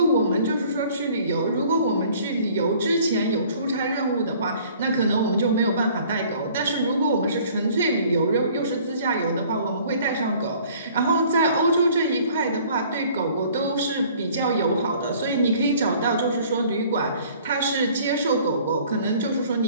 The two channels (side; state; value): both; inverted; correlation -0.54